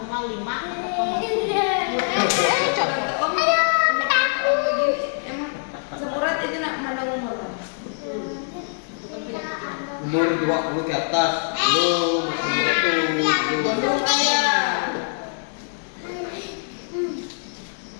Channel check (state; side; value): silent; right; digital silence